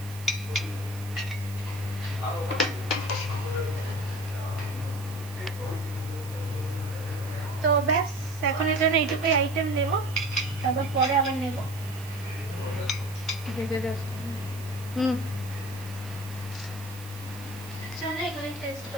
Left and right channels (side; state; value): right; noise; hiss, 17 dB below the sound